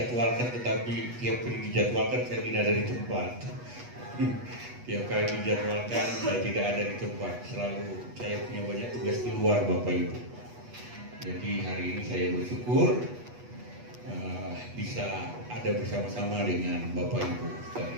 tetapi tiap kali dijadwalkan saya tidak ada di tempat. Tiap kali dijadwalkan saya tidak ada di tempat. Selalu saya punya banyak tugas keluar Bapak Ibu. Jadi hari ini saya bersyukur bisa ada bersama-sama dengan Bapak Ibu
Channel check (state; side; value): late; left; 8.2 ms